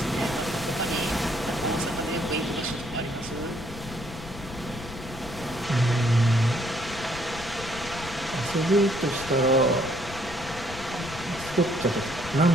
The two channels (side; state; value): left; noise; rumble, 13 dB below the sound